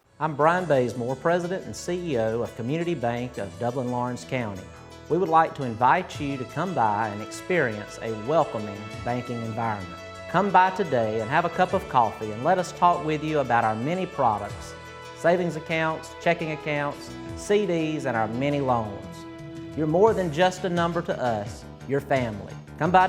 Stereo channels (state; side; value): identical; both; correlation 1.00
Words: I'm Brian Bazemore, President and CEO of Community Bank of Dublin-Lawrence County. We would like to invite you to come by and experience a welcoming banking environment. Come by today and have a cup of coffee and let us talk with you about our many products, savings accounts, checking accounts, CDs, and our many loans. You're more than just a number to us, you're family. Come by